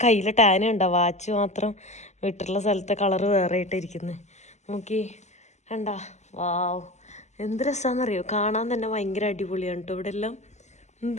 കയ്യിൽ ടാന ഉണ്ടോ, വാച്ച് മാത്രം വിട്ടിട്ടുള്ള സ്ഥലത്തെ കളറ് വേറെ ആയിട്ടിരിക്കുന്നത്. നോക്കി കണ്ടാ. വാവ്, എന്ത് രസമാണെന്നറിയോ. കാണാൻ തന്നെ ഭയങ്കര അടിപൊളിയാണ് കേട്ടോ. ഇവിടെ എല്ലാം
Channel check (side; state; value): right; late; 0.33 ms